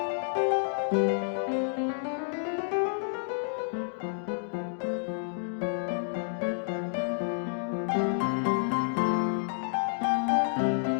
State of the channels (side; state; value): right; silent; digital silence